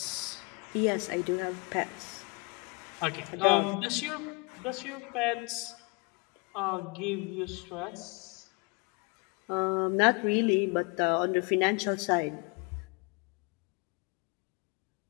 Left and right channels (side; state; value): right; quieter; 29.3 dB